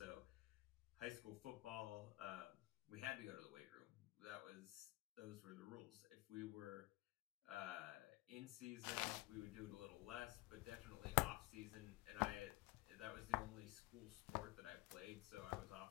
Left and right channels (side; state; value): right; quieter; 19.9 dB